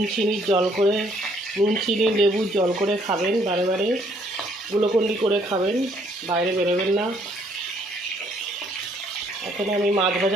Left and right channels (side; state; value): both; normal; correlation 0.66